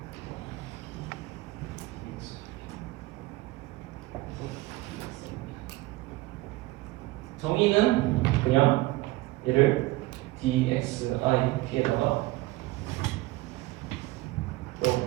정의는 그냥 얘를 dxip에다가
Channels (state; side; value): quieter; left; 19.5 dB